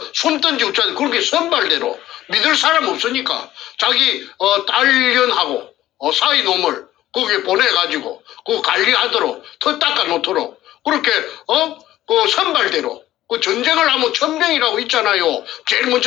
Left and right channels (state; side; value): quieter; right; 14.2 dB